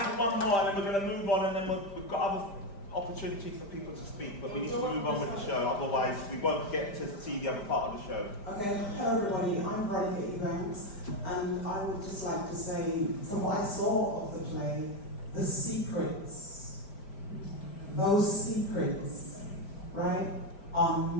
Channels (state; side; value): late; right; 5.0 ms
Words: One more, and then we're going to move on, and then we've got other opportunities for people to speak, but we need to move on with the show, otherwise we won't get to see the other part of the show. Okay, hello everybody, I'm Veronica Ebanks, and I would just like to say, from what I saw of the play, the secrets, those secrets, right, are